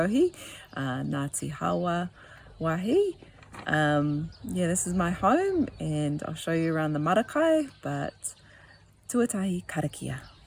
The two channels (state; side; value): identical; both; correlation 1.00